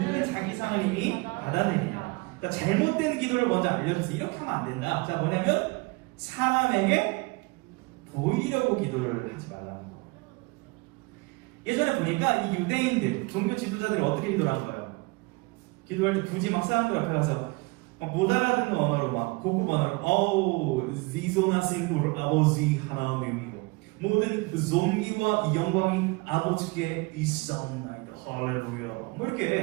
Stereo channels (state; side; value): quieter; left; 26.1 dB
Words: 자기 상을 이미 받아내니라. 그러니까 잘못된 기도를 먼저 알려주세요. 이렇게 하면 안 된다. 자, 뭐냐면 사람에게 보이려고 기도를 하지 말라는 거. 예전에 보니까 이 유대인들, 종교 지도자들이 어떻게 기도를 한 거예요? 기도할 때 굳이 막 사람들 앞에 가서 못 알아듣는 언어로 막 고급 언어로 지소나신으로 아버지 하나님이요 모든 존귀와 영광이 아버지께 있사옵나이다. 할렐루야. 뭐